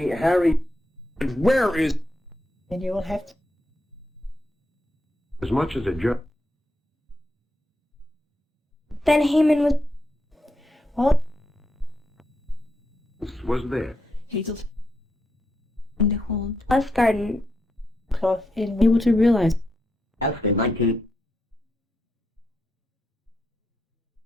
Harry... And where is... and you will have to as much as a jerk. Then Haman was all Was there. Hazel in the hold us garden. cloth in able to realize As in 19...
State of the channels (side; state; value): both; normal; correlation 0.82